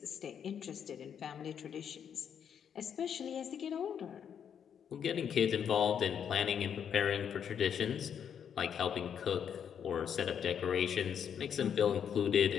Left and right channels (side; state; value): right; quieter; 8.1 dB